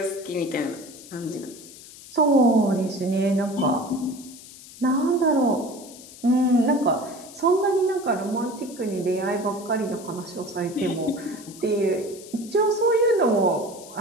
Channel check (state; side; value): noise; left; hiss, 18 dB below the sound